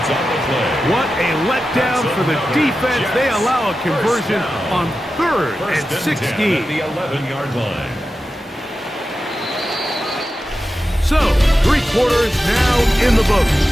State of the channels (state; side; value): normal; both; correlation 0.92